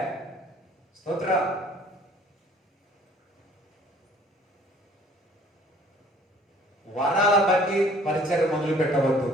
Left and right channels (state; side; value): normal; both; correlation 0.55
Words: స్తోత్ర. వరాల బట్టి పరిచయం మొదలు పెట్టవద్దు.